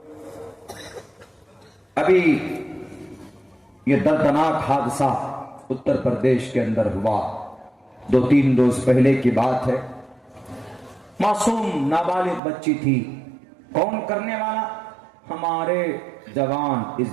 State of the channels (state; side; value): drops out; left; at 12.4 s